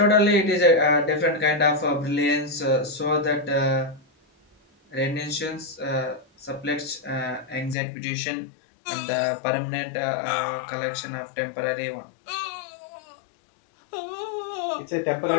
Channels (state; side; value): drops out; right; at 7.8 s